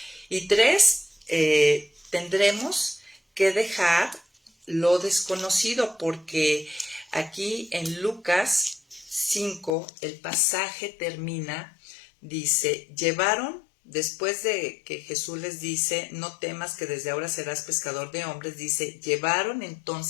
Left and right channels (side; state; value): right; drops out; at 9.8 s